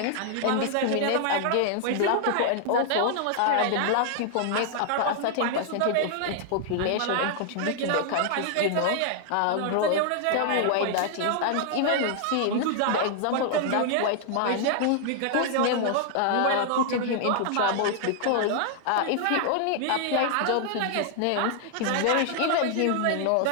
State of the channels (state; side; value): different; both; correlation -0.01